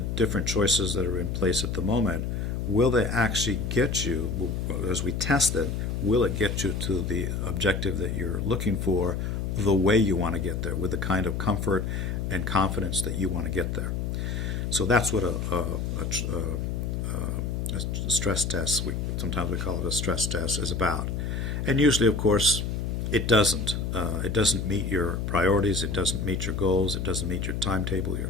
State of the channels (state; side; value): noise; left; hum, 2 dB below the sound